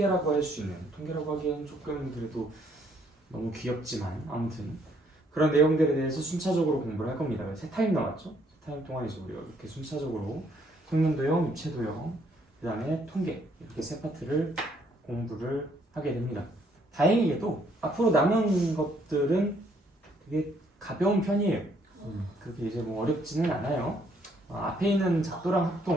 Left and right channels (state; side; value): normal; both; correlation 0.68